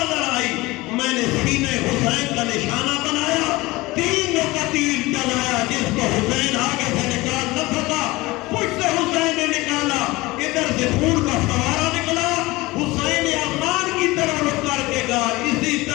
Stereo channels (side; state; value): right; quieter; 21.0 dB